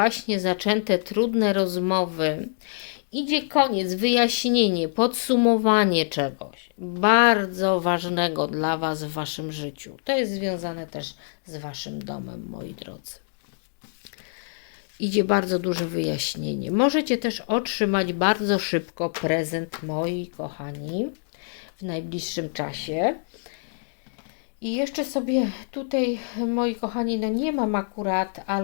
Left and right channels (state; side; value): silent; right; digital silence